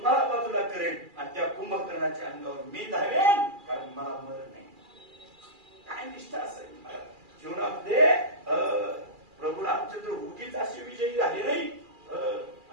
बाजूला करेन आणि त्या कुंभकर्णाच्या अंगावर मी धावेन, कारण मला मरण नाही. काय निष्ठा असेल जीवनामध्ये. प्रभू रामचंद्र उगीच असे विजयी झाले नाही,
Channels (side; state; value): left; late; 2.4 ms